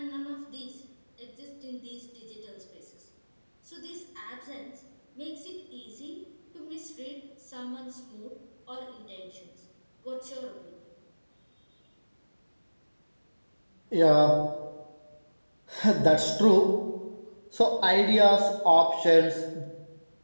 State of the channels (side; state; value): both; inverted; correlation -1.00